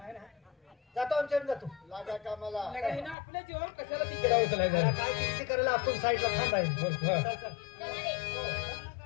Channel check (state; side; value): drops out; right; at 3.2 s